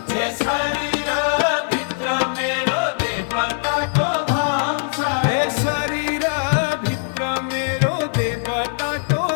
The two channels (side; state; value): right; silent; 65 dB below the other